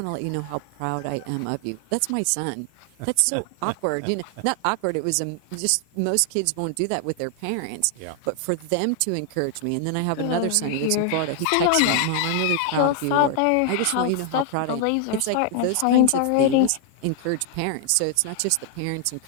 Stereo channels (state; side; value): different; both; correlation 0.00